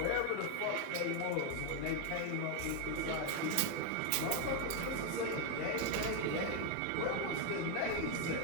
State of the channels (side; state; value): both; different; correlation 0.01